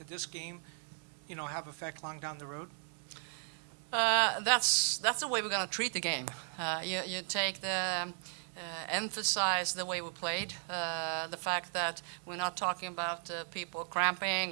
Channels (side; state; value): left; silent; 54 dB below the other